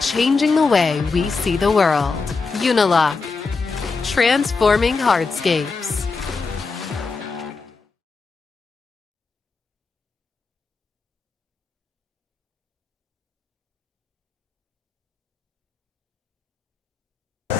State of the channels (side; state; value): right; quieter; 4.4 dB